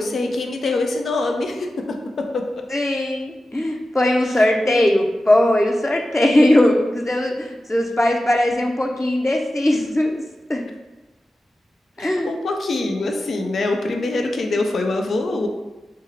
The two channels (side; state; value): both; normal; correlation 0.93